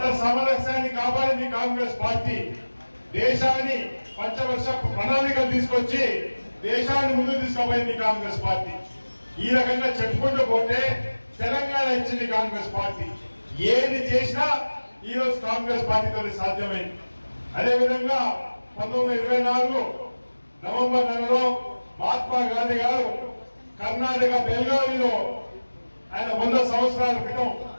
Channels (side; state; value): both; inverted; correlation -1.00